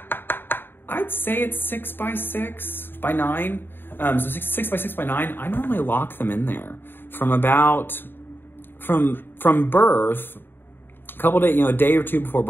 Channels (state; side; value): late; right; 0.098 ms